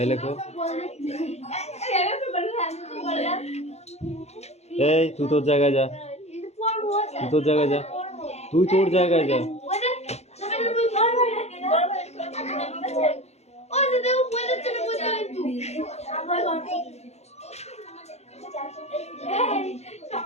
লেখো এই তুই তোর জায়গায় যা তুই তোর জায়গায় যা তুই তোর জায়গায় যা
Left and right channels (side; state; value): right; late; 0.31 ms